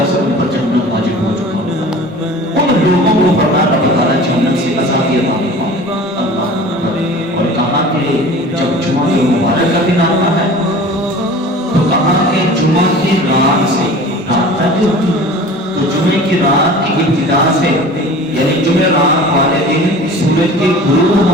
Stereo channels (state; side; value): normal; both; correlation 0.41